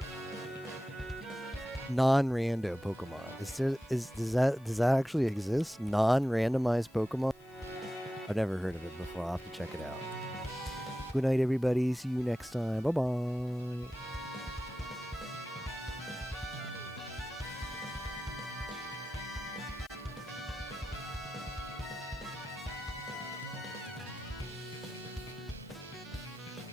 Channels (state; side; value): noise; left; hiss, 29 dB below the sound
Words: non-rando Pokemon. Does that actually exist? Non-randomized Pokemon? I've never heard of it before. I'll have to check it out. Good night, everybody. See you next time. Bye-bye.